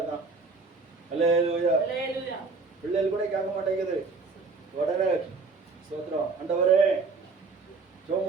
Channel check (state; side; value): quieter; left; 4.2 dB